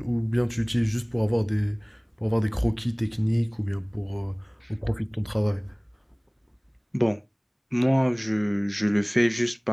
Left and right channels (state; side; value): identical; both; correlation 1.00